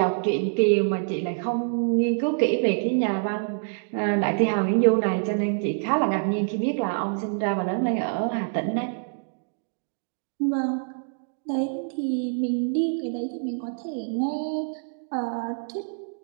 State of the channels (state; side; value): silent; left; digital silence